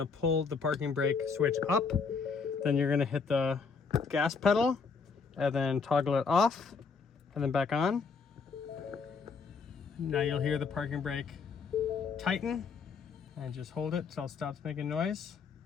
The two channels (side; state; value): right; quieter; 5.2 dB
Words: to pull the parking brake switch up, then you're going to hit the gas pedal, and then toggle it off, and then back on. Now you'll hear the parking brake tighten, and just hold it until it stops making noise.